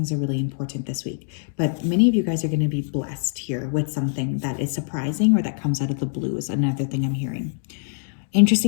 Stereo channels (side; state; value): right; silent; digital silence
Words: are really important this week. But many of you guys are going to be blessed here with something that is surprising or that comes out of the blue is another thing I'm hearing.